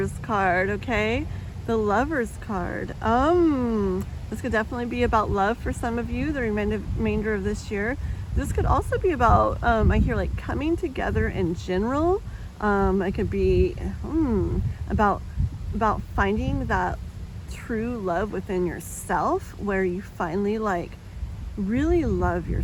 card, okay? The Lover's card. This could definitely be about love for some of you the remainder of this year. This could also be about, I hear like coming together in general. It could be about finding that true love within yourself where you finally like really love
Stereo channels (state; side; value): identical; both; correlation 1.00